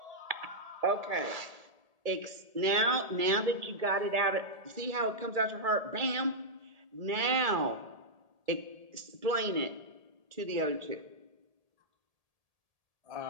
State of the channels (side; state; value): left; late; 1.8 ms